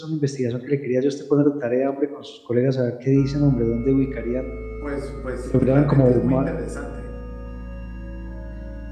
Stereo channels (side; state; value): both; identical; correlation 1.00